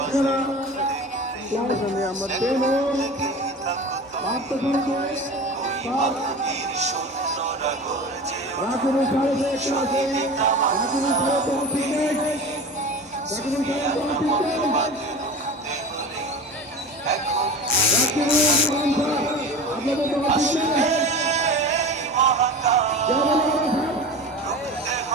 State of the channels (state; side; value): normal; both; correlation 0.33